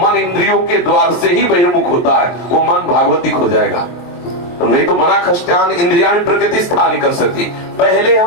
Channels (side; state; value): right; late; 23 ms